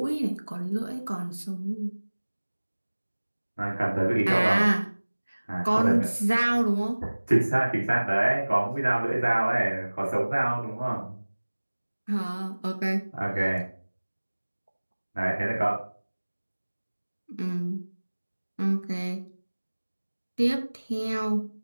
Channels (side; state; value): both; inverted; correlation -1.00